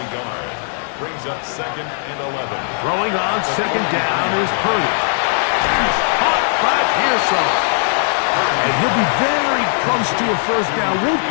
Brings up second and 11. Throwing on second down is Purdy. Caught by Pearsall. And he'll be very close to a first down. Won't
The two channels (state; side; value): silent; right; digital silence